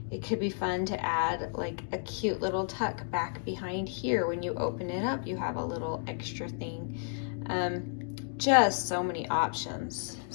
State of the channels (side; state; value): right; silent; 56 dB below the other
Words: It could be fun to add like a cute little tuck back behind here. When you open it up, you have a little extra thing. Just so many options.